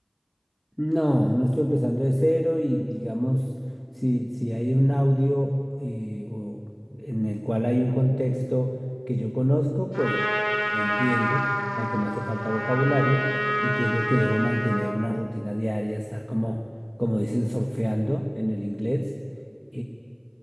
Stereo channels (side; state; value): both; identical; correlation 1.00